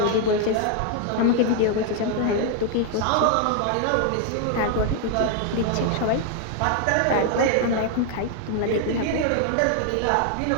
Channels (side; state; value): both; different; correlation 0.00